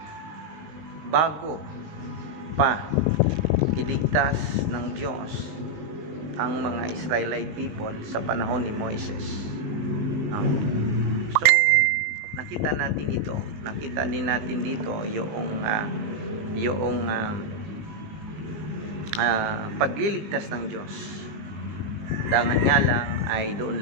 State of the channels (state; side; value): late; left; 20 ms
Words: bago pa iligtas ng Diyos ang mga Israelite people sa panahon ni Moises. So nakita din natin dito yung pagliligtas ng Diyos. Dangan nga lang ay doon